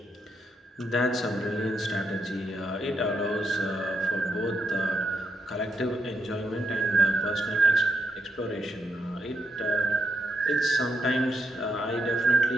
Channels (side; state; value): both; normal; correlation 0.80